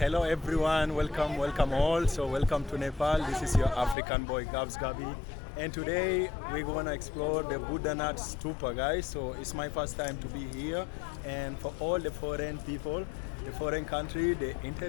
everyone, welcome all. So welcome to Nepal. This is your African boy Gabs Gabi, and today we're gonna explore the Boudha Stupa, guys. So it's my first time to be here, and for all the foreign people, the foreign country, the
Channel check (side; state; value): right; drops out; at 4.0 s